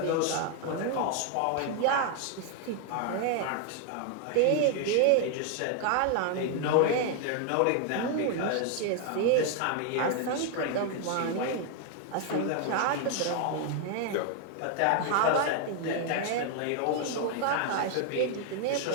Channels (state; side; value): different; both; correlation 0.00